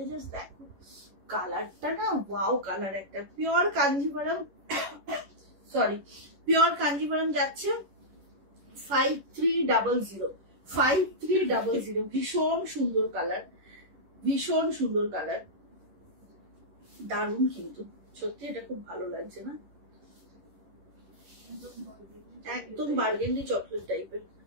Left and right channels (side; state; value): left; late; 11 ms